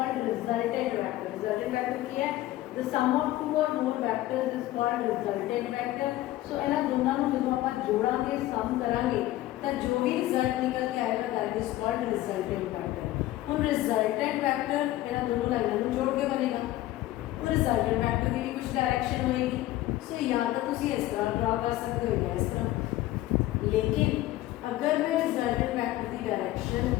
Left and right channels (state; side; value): quieter; right; 15.7 dB